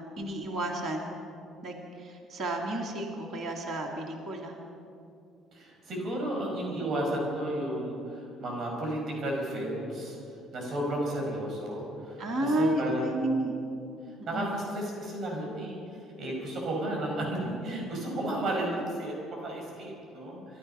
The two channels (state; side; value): normal; both; correlation 0.64